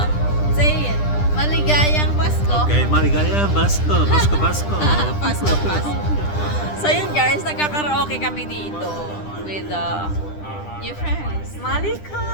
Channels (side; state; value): right; late; 10 ms